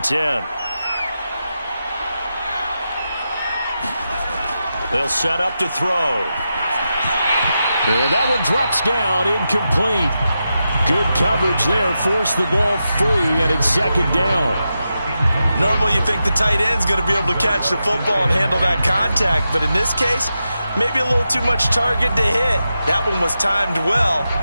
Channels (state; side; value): inverted; both; correlation -0.89